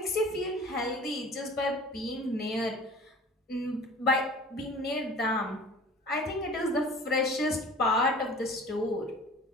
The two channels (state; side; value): normal; both; correlation 0.44